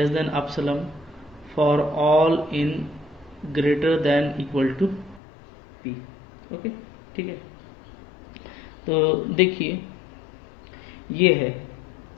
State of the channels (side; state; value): right; drops out; at 5.2 s